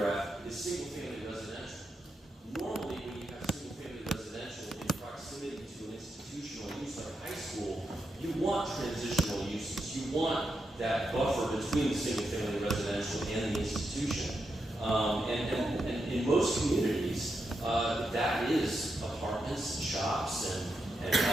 is single-family residential. Normally, when you have single-family residential in proximity to an institutional use like a high school, you want transitional uses. You want that buffer between the single-family residential and the institution. And in most communities, that is apartments, shops, and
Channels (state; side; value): normal; both; correlation 0.85